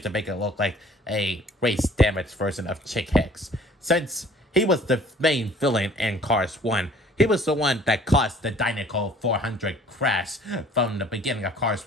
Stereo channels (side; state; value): both; normal; correlation 0.53